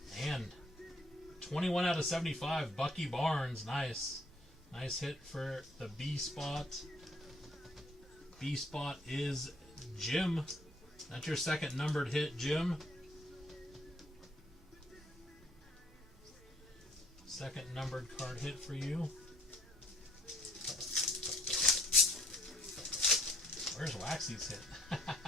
And 21 out of 75. Bucky Barnes. Nice. Nice hit for the B spot. B spot is Jim. That's your second numbered hit, Jim. Second numbered card hit for you. Where's Waxy's hit?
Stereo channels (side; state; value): both; normal; correlation 0.63